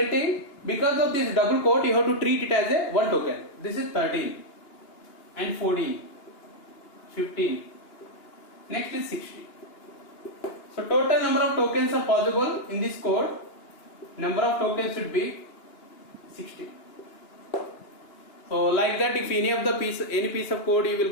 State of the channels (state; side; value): late; right; 2.9 ms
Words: because of this double quote, you have to treat it as a one token. This is 13 and 14, 15. Next is 16. So total number of tokens are possible in this code. Number of tokens should be 16. So like that, if any piece of code you will